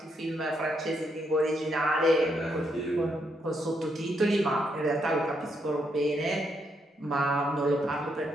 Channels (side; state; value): both; normal; correlation 0.78